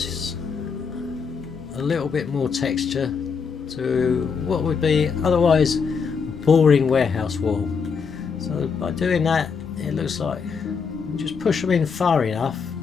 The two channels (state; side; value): quieter; right; 5.8 dB